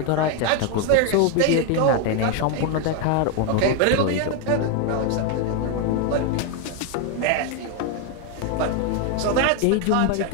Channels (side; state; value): both; different; correlation 0.01